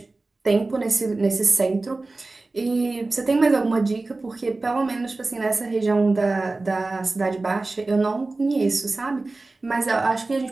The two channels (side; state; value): left; quieter; 3.3 dB